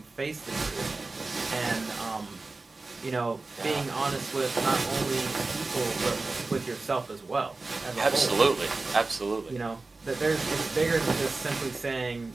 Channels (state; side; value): quieter; left; 3.5 dB